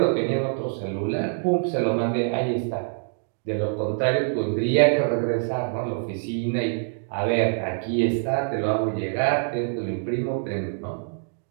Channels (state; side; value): silent; left; digital silence